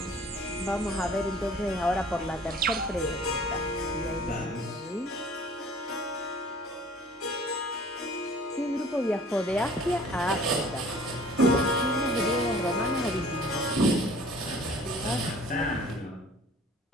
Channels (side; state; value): both; normal; correlation 0.50